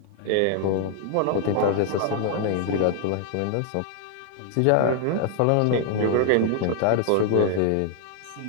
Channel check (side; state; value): both; different; correlation 0.00